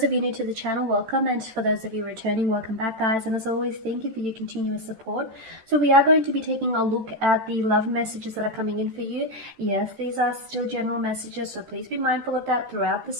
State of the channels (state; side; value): late; left; 13 ms